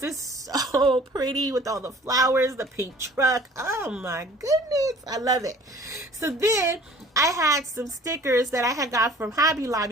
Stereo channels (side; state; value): both; normal; correlation 0.50